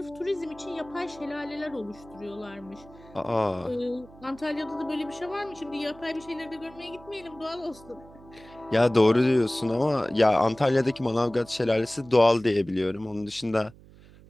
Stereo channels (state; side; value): noise; right; hum, 22 dB below the sound